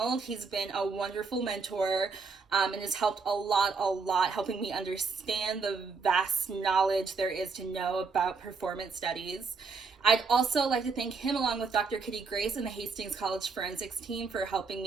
He's been a wonderful mentor and has helped a lot, helping me understand the vast knowledge there is to know about performance studies. I'd also like to thank him along with Dr. Kitty Grace and the Hastings College Forensics team for helping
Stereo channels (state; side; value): quieter; left; 4.7 dB